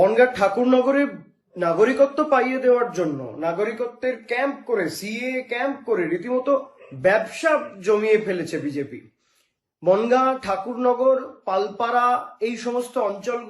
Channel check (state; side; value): identical; both; correlation 1.00